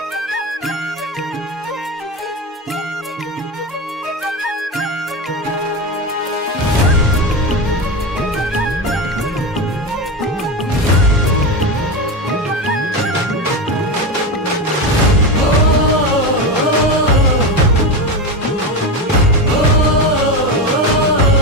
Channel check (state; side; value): normal; both; correlation 0.18